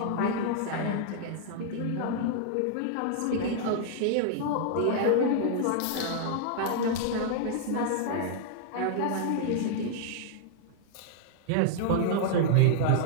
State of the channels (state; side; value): different; both; correlation -0.01